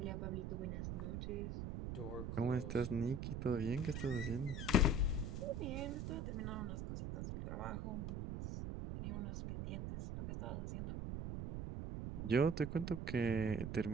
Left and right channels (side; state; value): right; noise; rumble, 4 dB below the sound